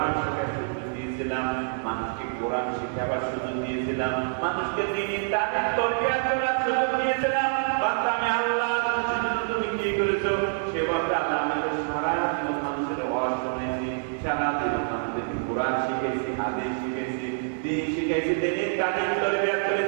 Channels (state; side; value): silent; left; digital silence